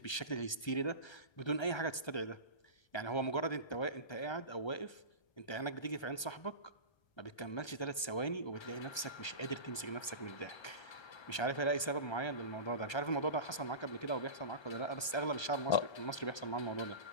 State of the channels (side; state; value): right; late; 1.3 ms